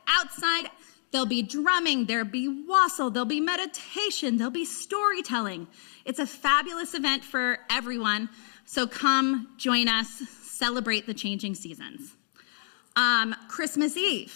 outside. There'll be drumming. There'll be wassail. There'll be meditation. There'll be storytelling. It's a fabulous event for everyone. So come join us. Celebrate the changing seasons. Christmas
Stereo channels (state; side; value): silent; right; digital silence